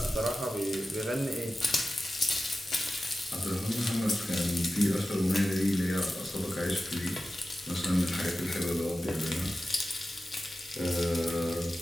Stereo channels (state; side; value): normal; both; correlation 0.94